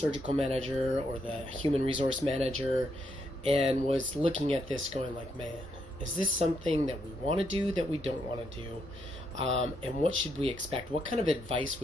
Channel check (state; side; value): normal; both; correlation 0.78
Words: manager or the human resource manager and was looking at this going like, man, is this something that we want to do, that we don't want to do? And what should we expect? What kind of advice